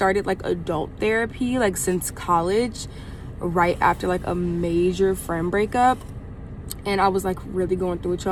like adult therapy like since college, right after like a major friend breakup. And I was like really going through it,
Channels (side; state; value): both; identical; correlation 1.00